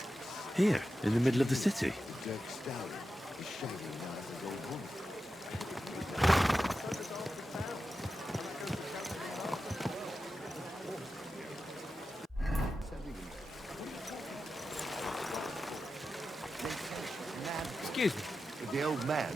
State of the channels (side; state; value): both; normal; correlation 0.91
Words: Here, in the middle of the city. Excuse me. The old man